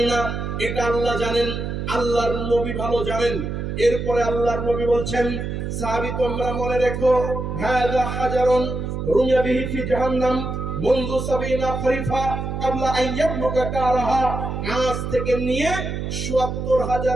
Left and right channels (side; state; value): right; noise; hum, 4 dB below the sound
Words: না, এটা আল্লাহ জানেন, আল্লাহর নবী ভালো জানেন। এরপরে আল্লাহর নবী বলছেন, সাহাবী তোমরা মনে রেখো, হাযা হাজারুন রুমিয়া বিহি ফি জাহান্নাম মুনযু ৭০ খরিফা ক্বাবলা আন ইয়াবলুগা কারাহা। আজ থেকে নিয়ে